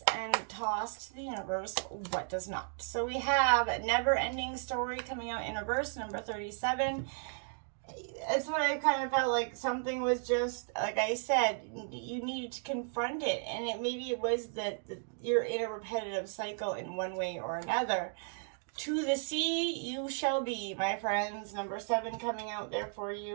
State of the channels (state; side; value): silent; left; 55 dB below the other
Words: and toss to the universe what does not. So we have Never Ending Story coming out in reverse, number 37. It's what I kind of felt like something was just, like I said, you needed to confront it. And maybe it was that you're in a repetitive cycle in one way or another. To the sea you shall be, my friends. Number 7 coming out there for